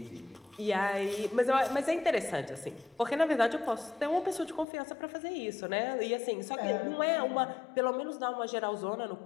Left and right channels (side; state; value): right; drops out; at 4.7 s